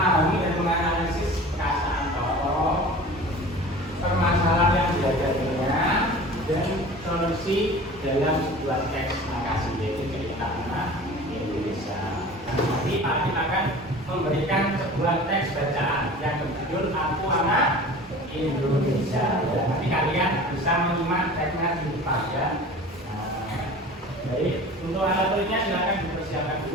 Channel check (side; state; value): both; normal; correlation 0.40